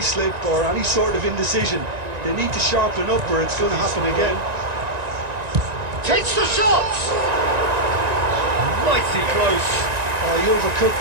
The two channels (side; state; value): left; late; 1.9 ms